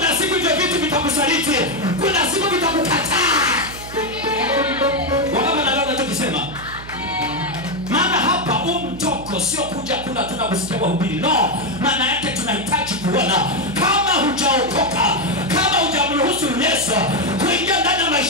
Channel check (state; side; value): noise; right; hum, 14 dB below the sound